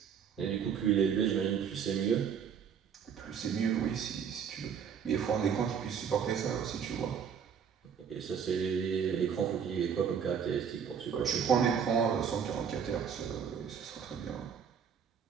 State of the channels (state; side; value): quieter; left; 7.5 dB